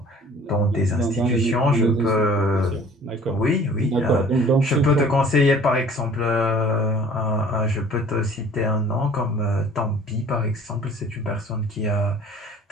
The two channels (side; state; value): both; normal; correlation 0.50